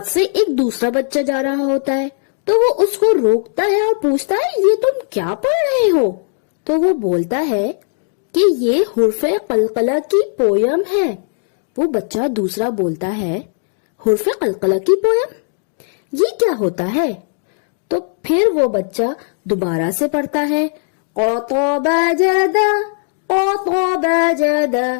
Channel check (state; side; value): silent; right; digital silence